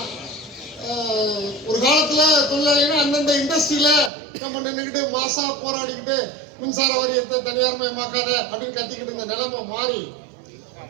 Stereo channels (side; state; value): left; drops out; at 4.1 s